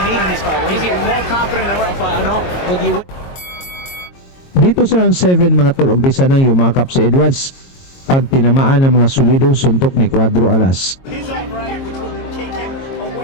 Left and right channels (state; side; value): late; right; 22 ms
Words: need in this fight. He's getting more confident in the right fight. But you Dito sa round 7 mga tol, umpisa nang yumakap si Edwards pag tinamaan ng mga solidong suntok ni Cuadro Alas. He's all right, which would take him